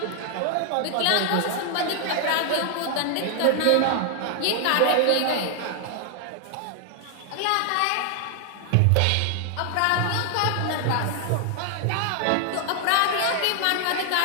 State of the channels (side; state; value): both; different; correlation 0.00